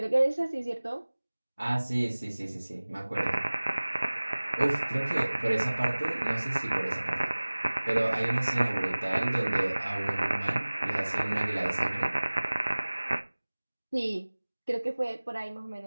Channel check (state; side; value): inverted; both; correlation -1.00